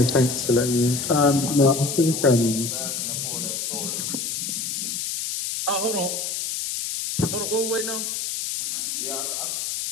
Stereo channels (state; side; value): noise; left; hiss, 3 dB below the sound